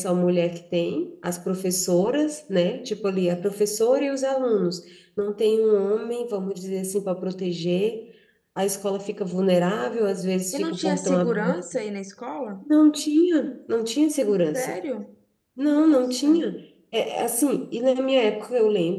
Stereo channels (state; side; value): identical; both; correlation 1.00